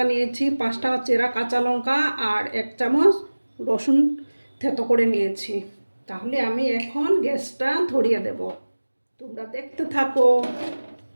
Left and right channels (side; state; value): both; inverted; correlation -1.00